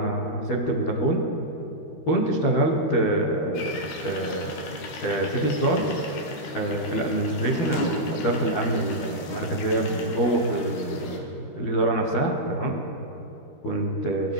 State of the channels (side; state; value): right; late; 13 ms